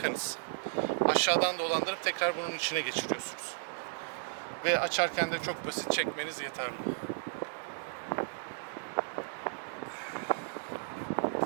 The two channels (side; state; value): left; silent; digital silence